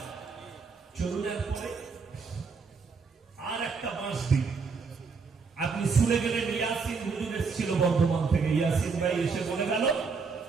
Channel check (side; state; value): left; quieter; 5.0 dB